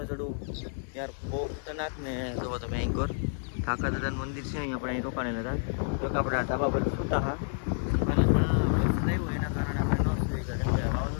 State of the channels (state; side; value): silent; right; digital silence